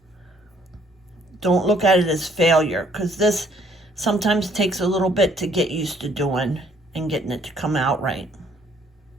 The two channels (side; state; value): both; normal; correlation 0.64